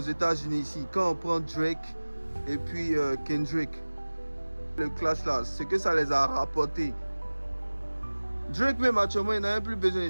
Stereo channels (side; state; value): both; inverted; correlation -1.00